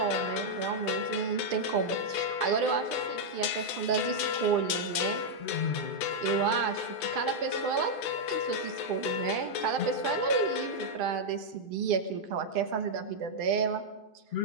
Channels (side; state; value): right; late; 2.5 ms